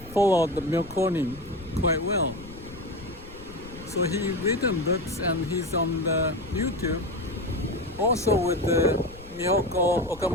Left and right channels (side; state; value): left; noise; rumble, 18 dB below the sound